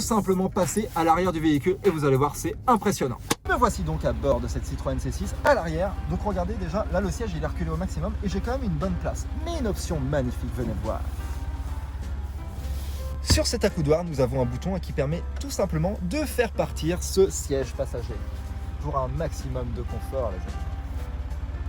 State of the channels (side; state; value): both; identical; correlation 1.00